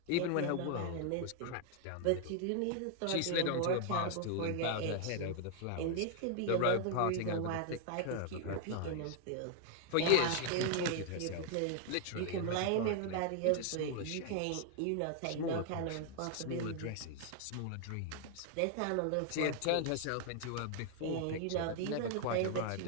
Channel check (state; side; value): different; both; correlation 0.00